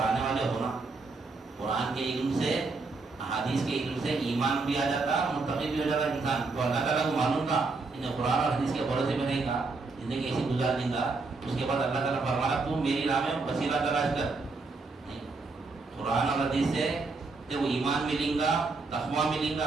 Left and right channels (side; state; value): left; quieter; 3.9 dB